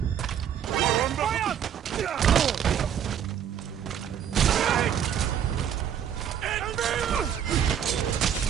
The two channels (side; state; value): left; quieter; 9.1 dB